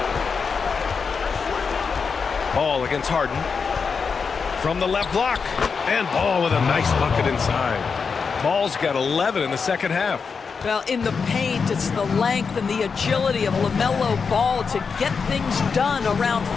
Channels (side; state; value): right; quieter; 5.5 dB